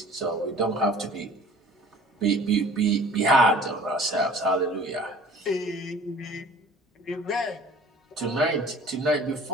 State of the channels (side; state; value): both; normal; correlation 0.48